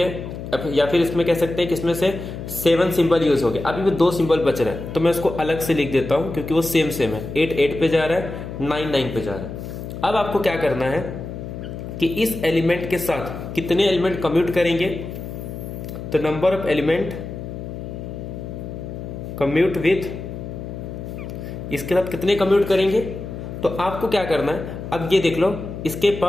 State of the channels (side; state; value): left; noise; hum, 9 dB below the sound